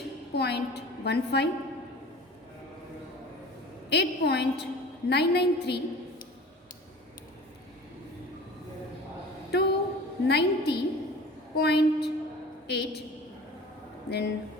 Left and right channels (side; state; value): both; normal; correlation 0.40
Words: 8.993, 290.8, then